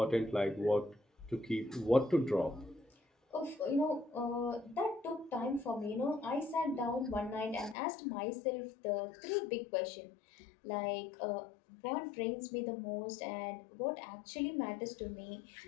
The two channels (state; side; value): drops out; right; at 7.8 s